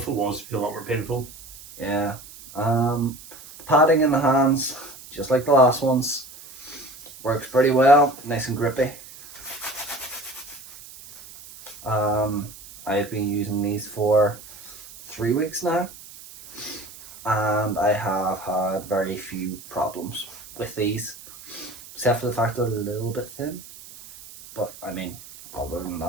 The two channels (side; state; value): right; noise; hiss, 17 dB below the sound